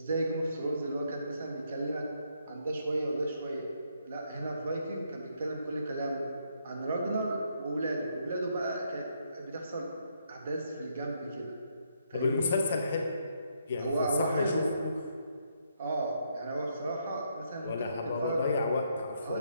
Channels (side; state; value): both; inverted; correlation -0.75